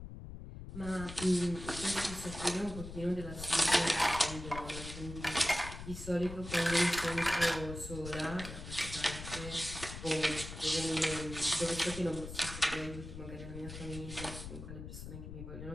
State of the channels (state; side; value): noise; left; rumble, 10 dB below the sound